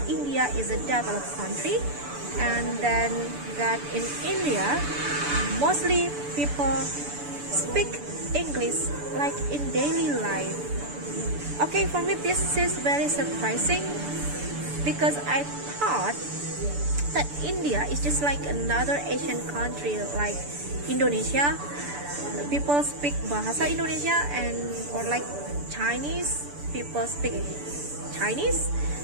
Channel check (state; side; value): late; left; 6.9 ms